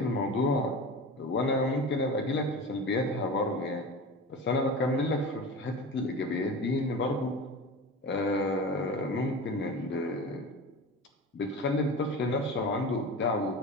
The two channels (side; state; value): both; normal; correlation 0.31